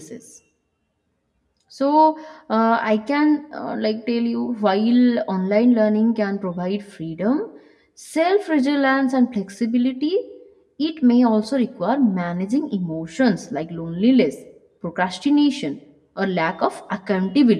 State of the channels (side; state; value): both; identical; correlation 1.00